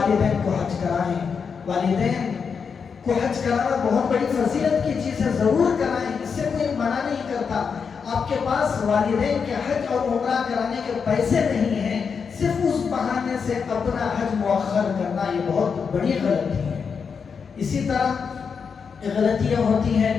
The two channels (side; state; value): right; quieter; 6.0 dB